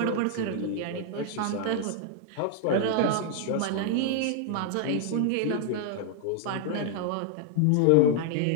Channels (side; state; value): both; different; correlation -0.01